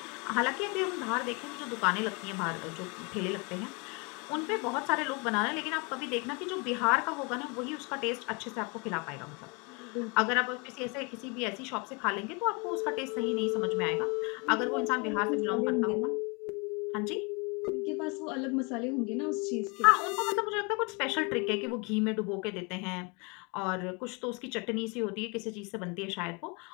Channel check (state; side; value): quieter; right; 31.0 dB